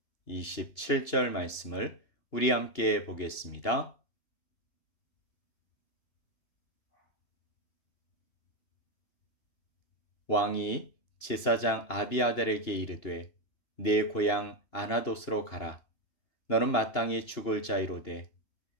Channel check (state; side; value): late; right; 2.8 ms